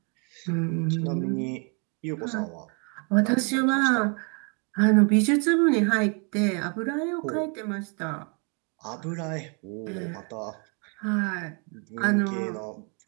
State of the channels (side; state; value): left; quieter; 36.5 dB